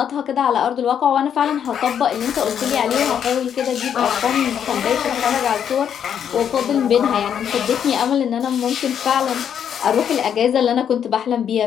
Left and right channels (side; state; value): right; quieter; 8.6 dB